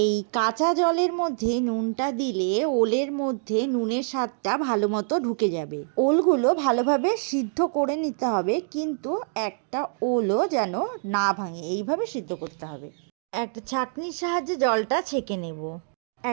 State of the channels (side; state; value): left; silent; digital silence